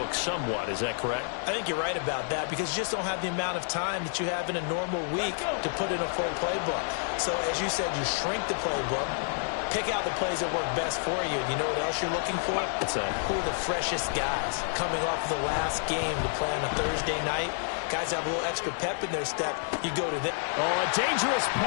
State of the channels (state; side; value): silent; right; digital silence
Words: somewhat. Is that correct? I think you're right about that because you just don't have the amount of time that you have in a normal week to put in a full playbook. So as you said, you shrink the playbook, pick out the plays that work best for you. You know what else you're looking for? Who are the freshest guys coming off the last game to play on a Thursday night? Guys have a little extra pep in their step. You go to them. Oh, a dangerous